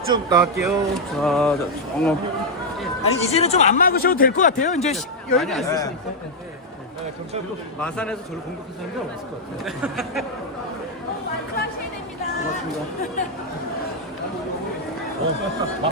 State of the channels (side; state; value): both; normal; correlation -0.01